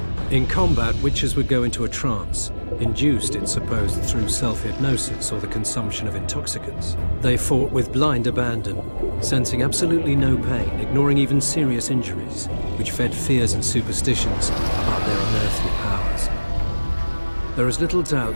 In combat, Witchers would go into a trance, induced, it's supposed, through self-hypnosis or the consumption of intoxicants. They fought with blind abandon, sensing absolutely no pain, ignoring even serious injuries, which fed fears and superstitions about their unearthly powers. There is little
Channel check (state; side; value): inverted; both; correlation -1.00